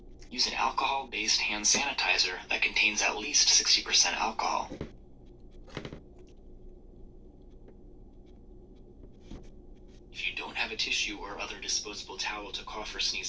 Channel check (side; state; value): both; identical; correlation 1.00